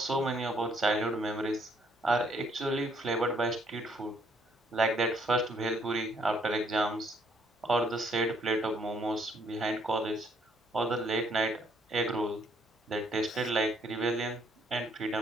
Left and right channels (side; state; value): both; normal; correlation 0.68